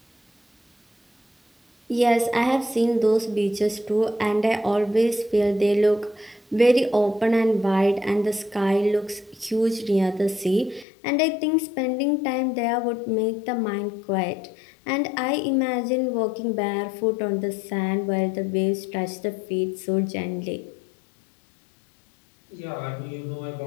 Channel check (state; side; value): drops out; right; at 10.9 s